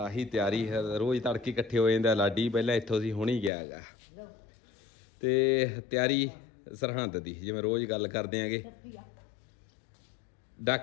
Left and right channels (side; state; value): right; drops out; at 3.5 s